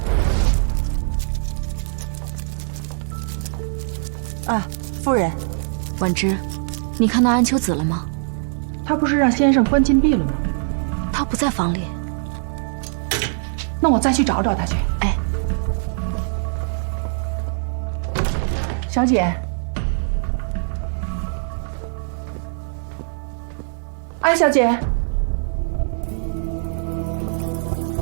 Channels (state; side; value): silent; left; digital silence